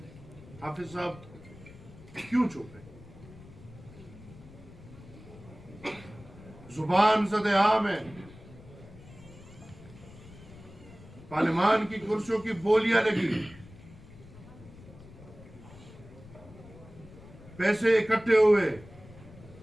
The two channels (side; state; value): left; noise; rumble, 19 dB below the sound